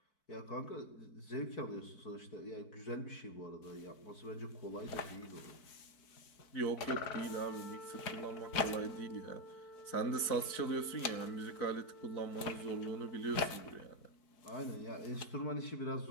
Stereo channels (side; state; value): right; late; 4.6 ms